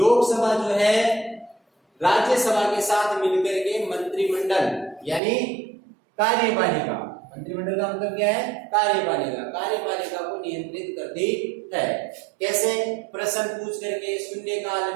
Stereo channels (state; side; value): drops out; left; at 5.2 s